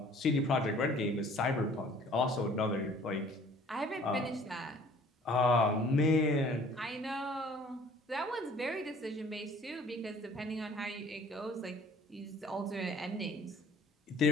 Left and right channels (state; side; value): normal; both; correlation 0.53